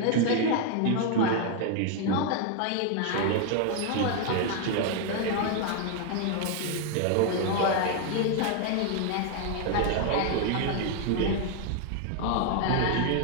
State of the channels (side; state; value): both; different; correlation 0.00